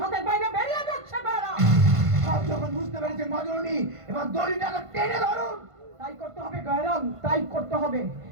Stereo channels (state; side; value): late; left; 1.5 ms